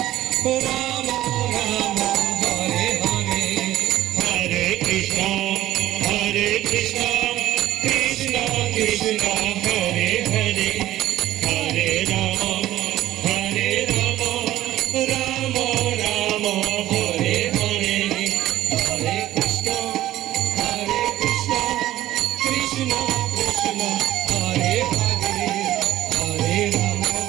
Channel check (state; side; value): quieter; left; 14.3 dB